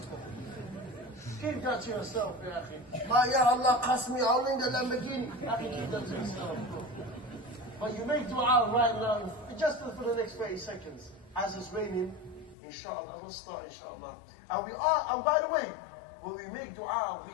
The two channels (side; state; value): right; drops out; at 12.6 s